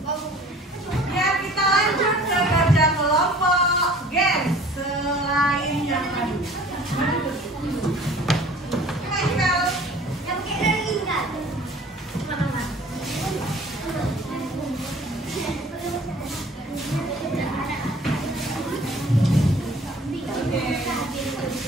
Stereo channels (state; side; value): normal; both; correlation 0.49